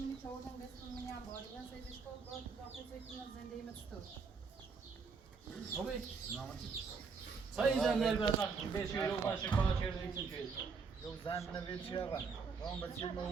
چودن بسم منی انباری من سیدش کن باید داخل سیدش زندگی مستور خوبی سایی زندگی برات بیشی رو باشه کار چیزی چیزی یو زن نوید چی آقا اون بچه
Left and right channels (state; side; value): quieter; left; 5.2 dB